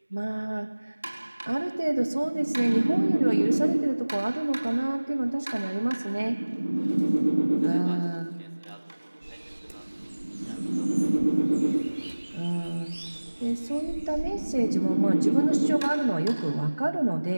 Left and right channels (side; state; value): both; inverted; correlation -1.00